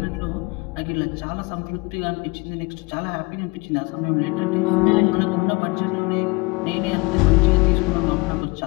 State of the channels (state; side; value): quieter; right; 25.4 dB